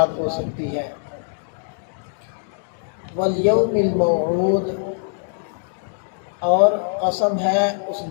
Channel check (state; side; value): silent; right; 64 dB below the other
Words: ہو سکتی ہے۔ والیوم الموعود، اور قسم ہے اس